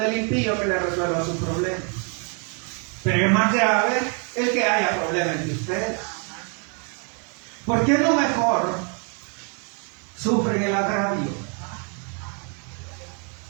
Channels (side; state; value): left; quieter; 38.8 dB